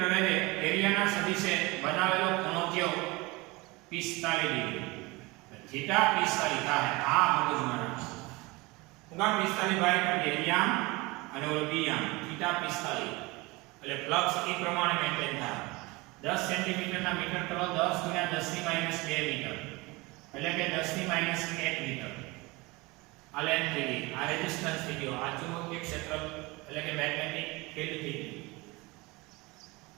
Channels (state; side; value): quieter; left; 23.8 dB